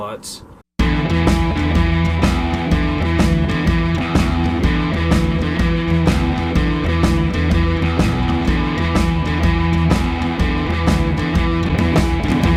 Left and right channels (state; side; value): identical; both; correlation 1.00